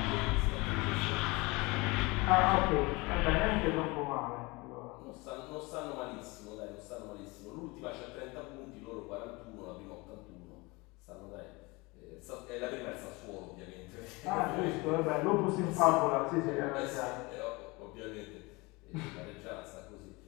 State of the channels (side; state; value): right; quieter; 24.8 dB